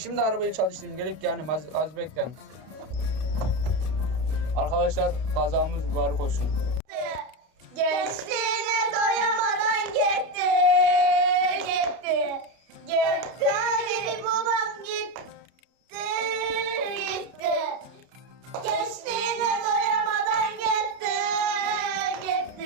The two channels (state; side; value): late; left; 32 ms